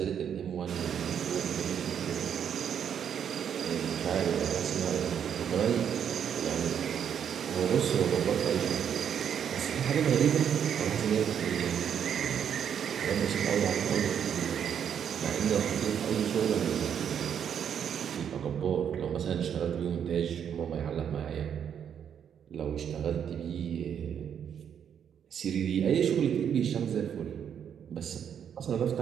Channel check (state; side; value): quieter; left; 8.4 dB